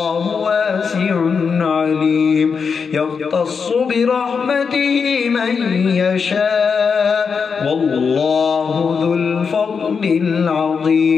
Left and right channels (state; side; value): quieter; right; 5.8 dB